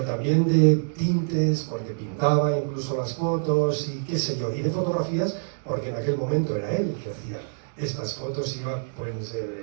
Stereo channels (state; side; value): silent; left; digital silence